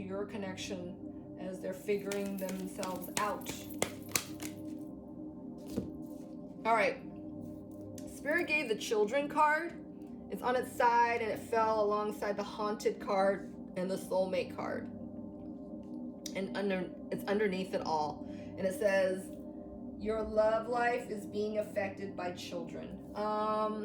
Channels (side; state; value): both; identical; correlation 1.00